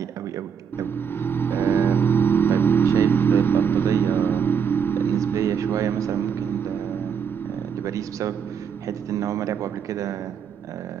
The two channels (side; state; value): left; quieter; 7.1 dB